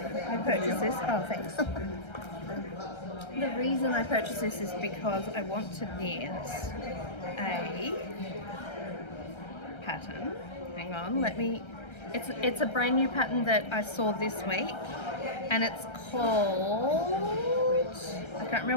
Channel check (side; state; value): right; late; 1.3 ms